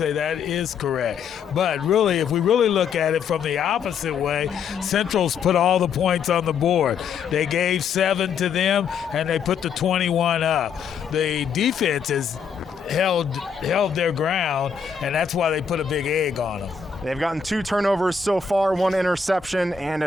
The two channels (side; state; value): right; quieter; 6.3 dB